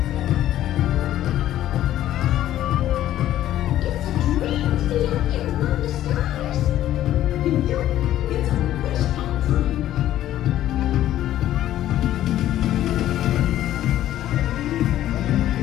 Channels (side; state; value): right; quieter; 12.8 dB